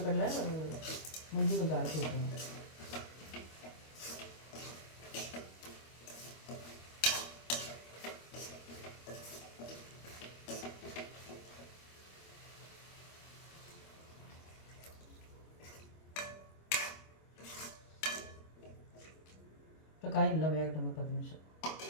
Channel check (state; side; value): late; right; 25 ms